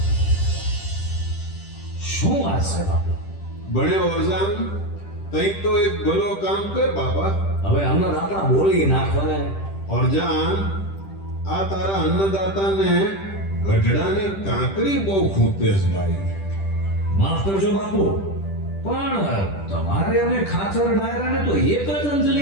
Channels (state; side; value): late; right; 10 ms